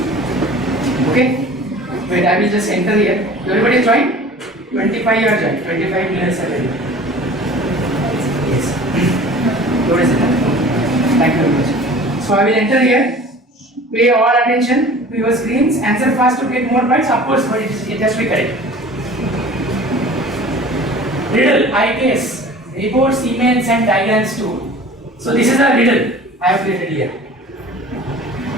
Okay? Wait, I will just enter here. Everybody join? 25 you are joined. 25 minutes are ready. Yes. What is it? Thank you very much. So I will enter here. Pay all attention to your screens. Answer fast to get more points. Of course, but it has to be correct. Riddle, I guess. Reports, emails and diagrams too. So this is a riddle I have created here.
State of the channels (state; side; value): normal; both; correlation 0.43